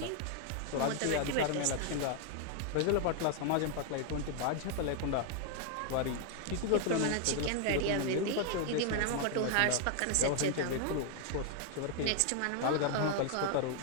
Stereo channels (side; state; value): both; different; correlation 0.00